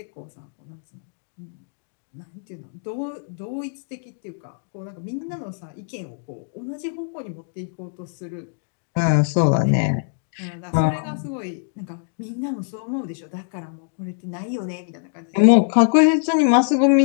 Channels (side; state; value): right; silent; digital silence